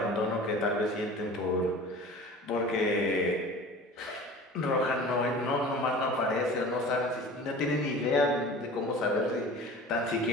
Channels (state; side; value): normal; both; correlation 0.40